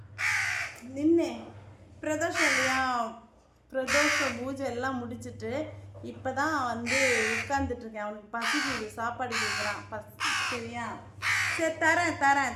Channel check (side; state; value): both; identical; correlation 1.00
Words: பிரதோஷம் இல்லையா, பிரதோஷ பூஜை எல்லாம் முடிச்சுட்டு இப்போ தான் வந்து உட்காந்துட்ருக்கேன். அவனுக்கு பசிக்குது, சாப்பாடு கேட்குறான். சரியா, சரி